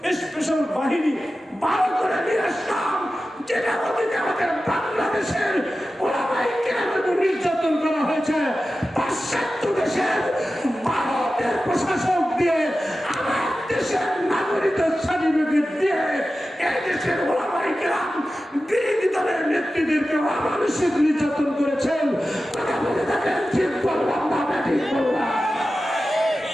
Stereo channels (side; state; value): both; normal; correlation 0.94